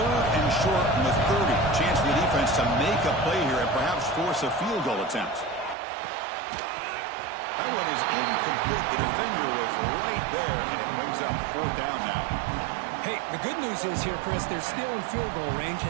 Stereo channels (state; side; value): drops out; left; at 5.8 s